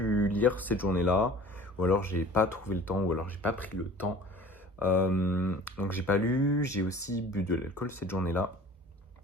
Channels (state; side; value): normal; both; correlation 0.45